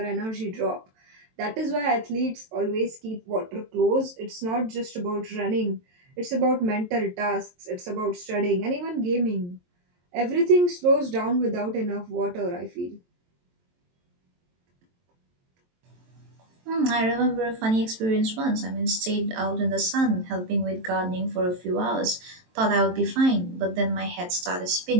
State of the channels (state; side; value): late; left; 23 ms